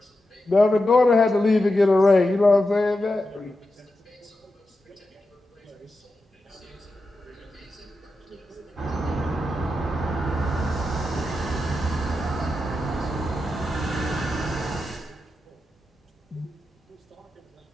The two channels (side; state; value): both; normal; correlation 0.89